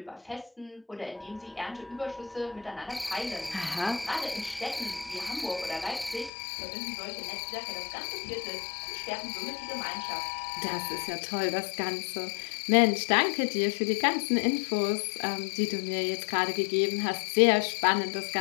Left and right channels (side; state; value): right; drops out; at 6.3 s